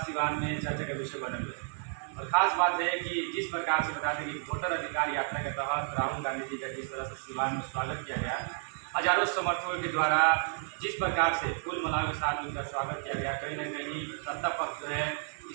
सिवान में चर्चा का विषय बने हुए हैं। और ख़ास बात है कि जिस प्रकार से बता दें कि वोटर अधिकार यात्रा के तहत राहुल गांधी जी का जिस तरह से सिवान में स्वागत किया गया, हजारों समर्थकों के द्वारा जिस प्रकार से फूल मालाओं के साथ उनका स्वागत किया गया, कहीं न कहीं सत्ता पक्ष जो है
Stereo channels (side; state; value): left; silent; digital silence